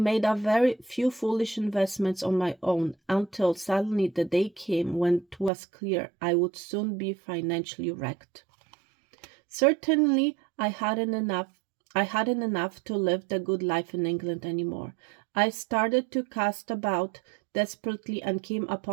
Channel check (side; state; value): left; drops out; at 5.5 s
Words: a very few foolish investments on my own until suddenly the day came when it was clear I would soon be financially wrecked. Certainly I hadn't enough to live the good life in England anymore. I started to cast about desperately and came